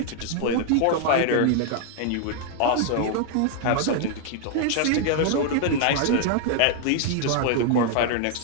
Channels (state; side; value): different; both; correlation 0.00